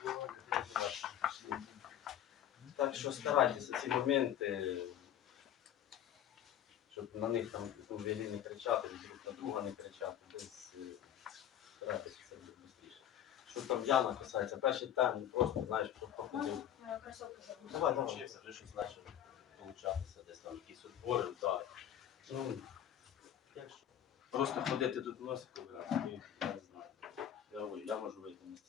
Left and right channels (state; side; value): quieter; right; 10.6 dB